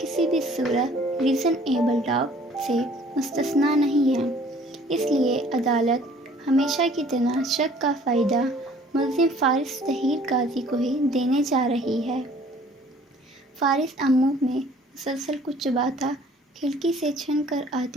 بھی صورت ریزنیبل ڈاؤٹ سے مستثنیٰ نہیں ہیں۔ اس لیے عدالت ہمیشہ کی طرح شک کا فائدہ ملزم فارس طاہر قاضی کو ہی دینے جا رہی ہے۔ فارس امو میں مسلسل کچھ چباتا کھڑکی سے چھن کر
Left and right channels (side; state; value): both; normal; correlation 0.55